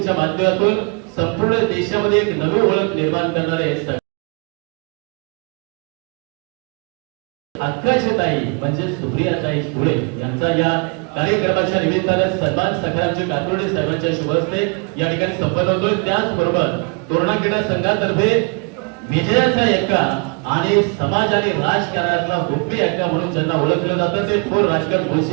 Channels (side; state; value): left; quieter; 34.3 dB